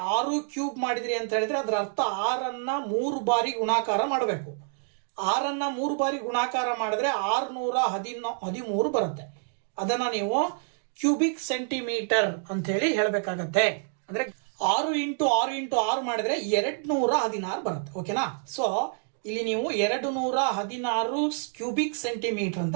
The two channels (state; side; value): silent; left; 60 dB below the other